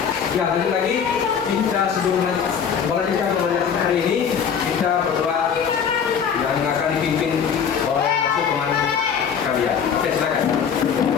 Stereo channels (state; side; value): quieter; right; 7.3 dB